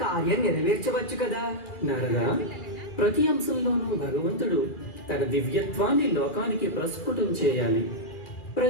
కార్యం నెరవేర్చవచ్చు కదా. నారద, ప్రతి అంశంలోనూ భగవంతుడు తన దివ్యత్వాన్ని లోకానికి ప్రస్ఫుటం చేయాలి.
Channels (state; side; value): late; right; 2.4 ms